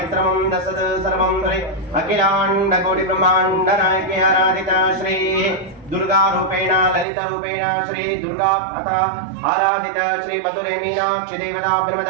दशद सर्वं हरि अखिलाण्डकोटि ब्रह्माण्ड नायके आराधिता श्री दुर्गा रूपेण ललित रूपेण श्री दुर्गा अथा आराधिता श्री मधुरे मीनाक्षी देवता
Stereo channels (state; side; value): drops out; left; at 7.1 s